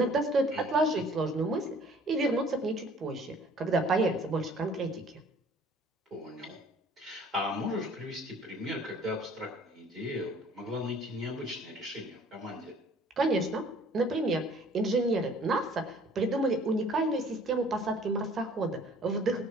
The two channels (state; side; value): normal; both; correlation 0.54